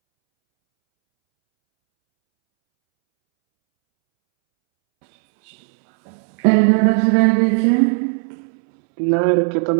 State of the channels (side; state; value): left; silent; 67 dB below the other